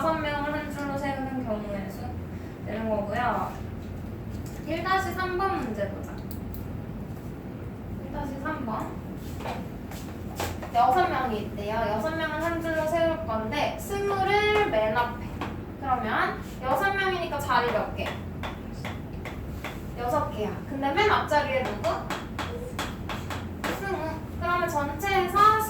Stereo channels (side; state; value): both; identical; correlation 1.00